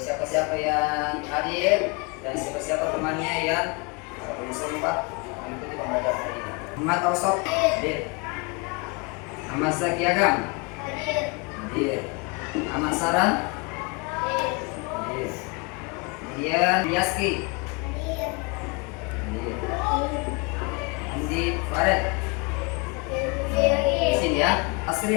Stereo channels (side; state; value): right; quieter; 30.1 dB